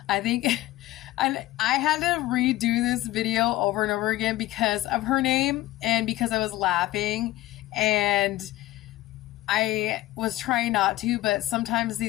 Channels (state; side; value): quieter; right; 16.6 dB